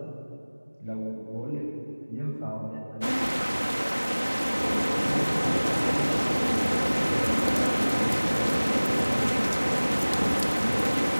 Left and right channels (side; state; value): both; inverted; correlation -1.00